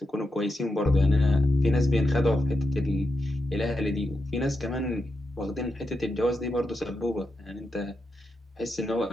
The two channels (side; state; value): both; normal; correlation 0.86